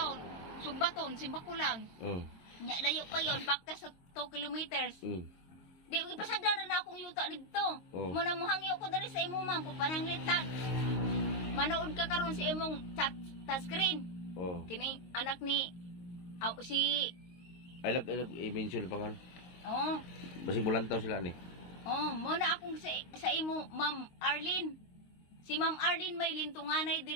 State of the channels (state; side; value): late; right; 22 ms